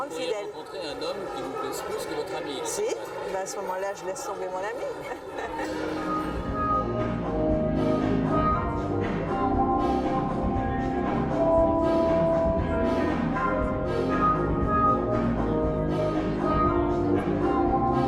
fidèle. Vous rencontrer un homme qui vous plaise plus que votre ami. Si, ben à ce moment-là, je laisse tomber mon ami.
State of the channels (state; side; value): identical; both; correlation 1.00